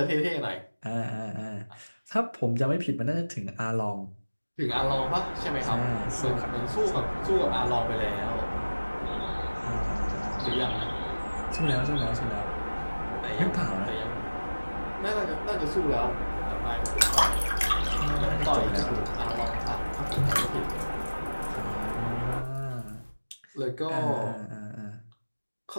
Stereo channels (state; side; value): inverted; both; correlation -1.00